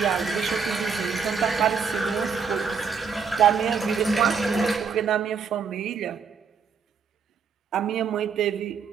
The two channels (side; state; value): left; quieter; 6.0 dB